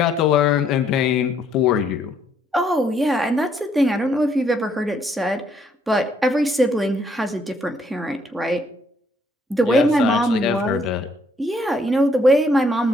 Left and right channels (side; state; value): both; normal; correlation 0.69